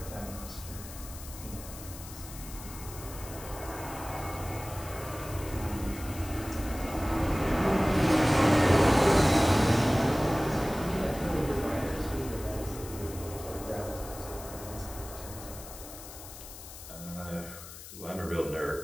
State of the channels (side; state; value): left; noise; hiss, 14 dB below the sound